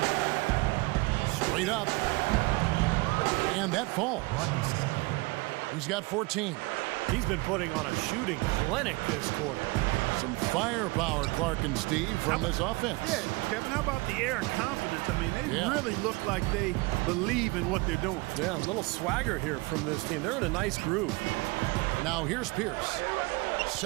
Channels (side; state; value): left; quieter; 25.5 dB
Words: Straight up. And that falls. He's got 14. He's been putting on a shooting clinic this quarter. Some firepower, Clark and Steve, from this offense. Yeah, Kevin, how about the air of confidence? They really look like they believe in what they're doing. Yeah, a little swagger here from this team. They're in a nice groove. Now here's Pierce.